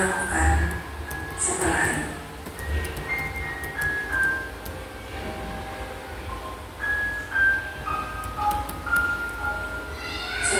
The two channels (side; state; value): both; identical; correlation 1.00